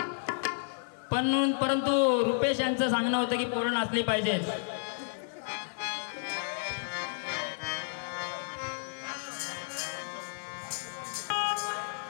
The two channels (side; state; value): right; silent; digital silence